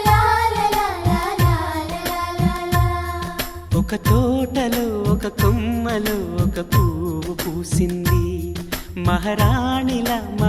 ఒక తోటలో ఒక కొమ్మలో ఒక పువ్వు పూసింది మహారాణిల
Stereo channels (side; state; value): both; identical; correlation 1.00